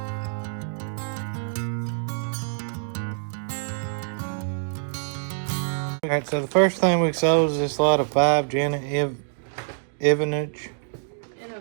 Alright, so the first thing we sold is this lot of 5 Jenna Ivanovich.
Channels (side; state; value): left; silent; digital silence